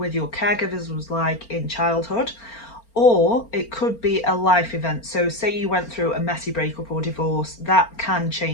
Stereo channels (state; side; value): late; right; 4.4 ms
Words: your caregivers was like in childhood, or it could be a life event. So say you went through a messy breakup or divorce, that can